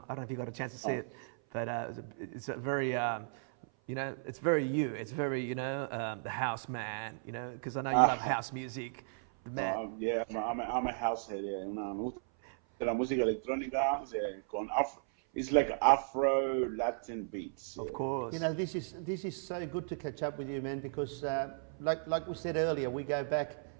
don't know if you got a chance to see it, but it's a very, you know, it's very you. It's very, you know, the house man, you know, because I know you love house music. The man. Yeah, I'm a house head. Yeah, you know, me gusta la música electrónica con afro. It's like Afro Latin beats. Of course. You know, this is so good to catch up with you, man, because like we said earlier, we go back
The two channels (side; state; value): left; silent; 54 dB below the other